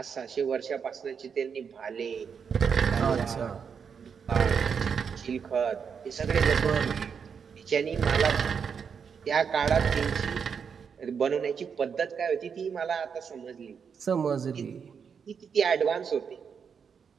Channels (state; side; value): quieter; left; 6.6 dB